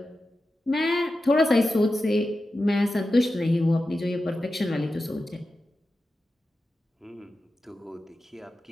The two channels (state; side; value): normal; both; correlation 0.92